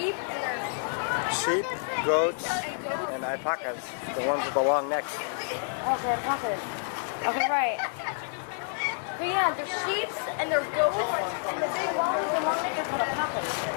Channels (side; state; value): right; silent; 59 dB below the other